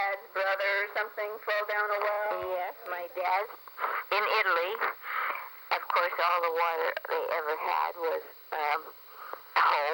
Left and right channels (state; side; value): identical; both; correlation 1.00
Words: brother or something fall down a well? Yes, my dad in Italy. Of course, all the water they ever had was